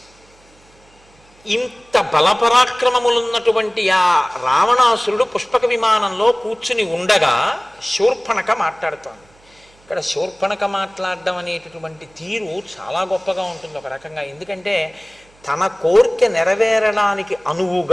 ఇంత బలపరాక్రమములున్నటువంటి ఆ రావణాసురుడు పుష్పక విమానంలో కూర్చుని ఉండగా శూర్పణఖ మాట్లాడుతోంది. ఇక్కడ శూర్పణఖ మాట్లాడడం అనేటటువంటి తీరు చాలా గొప్పగా ఉంటుంది ఒక రకంగా. ఎందుకంటే తన కోరిక నెరవేరడానికి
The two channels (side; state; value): right; noise; hum, 30 dB below the sound